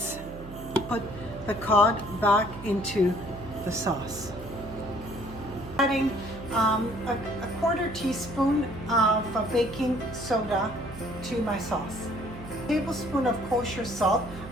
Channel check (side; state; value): right; noise; hum, 14 dB below the sound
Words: Put the cod back into the sauce. Adding a 1/4 teaspoon of baking soda to my sauce. A tablespoon of kosher salt.